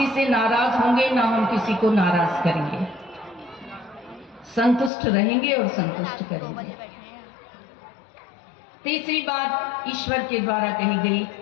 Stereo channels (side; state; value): right; drops out; at 4.9 s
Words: से नाराज होंगे, ना हम किसी को नाराज करेंगे। संतुष्ट रहेंगे और संतुष्ट करेंगे। तीसरी बात ईश्वर के द्वारा कही गई,